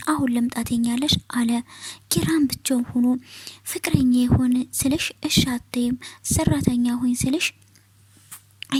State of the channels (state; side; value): identical; both; correlation 1.00